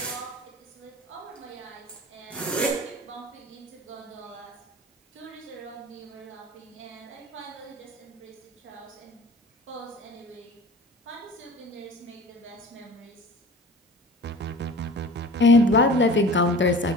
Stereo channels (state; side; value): normal; both; correlation 0.40